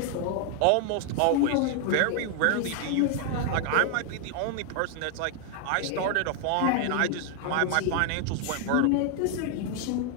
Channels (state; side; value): different; both; correlation 0.01